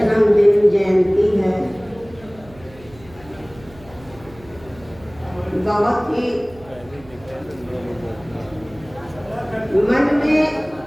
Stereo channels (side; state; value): right; noise; hum, 22 dB below the sound